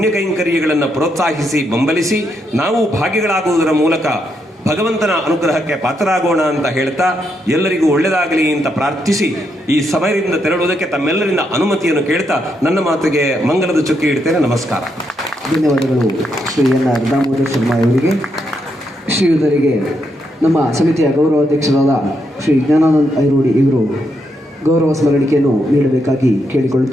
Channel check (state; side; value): normal; both; correlation 0.79